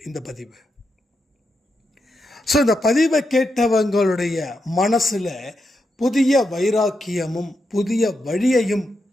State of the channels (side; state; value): both; normal; correlation 0.85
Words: இந்த பதிவு. ஸோ இந்த பதிவை கேட்டவங்களுடைய மனசில் புதிய வைராக்கியமும் புதிய வழியையும்